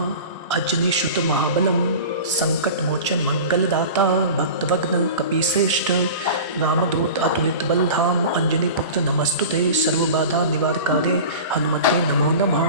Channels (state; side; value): inverted; both; correlation -0.35